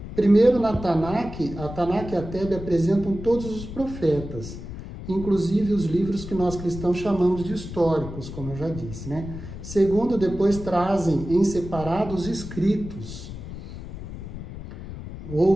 Primeiro, na Tanakh, a Tanakh e a Tebe apresentam todos os profetas, inclusive os livros que nós cristãos chamamos de históricos, como eu já disse, né? Segundo, depois trazem em separado os escritos,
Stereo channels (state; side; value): noise; left; rumble, 10 dB below the sound